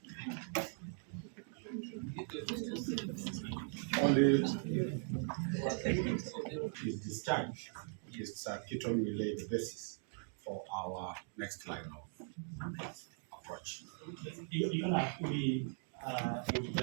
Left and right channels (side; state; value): left; silent; 51 dB below the other